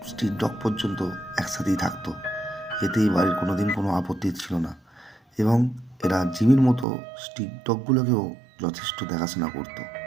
স্ট্রিট ডগ পর্যন্ত একসাথেই থাকতো। এতে এই বাড়ির কোনোদিন কোনো আপত্তি ছিল না, এবং এরা জিমির মতো স্ট্রিট ডগগুলোকেও যথেষ্ট দেখাশোনা করতো।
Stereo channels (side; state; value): left; drops out; at 6.9 s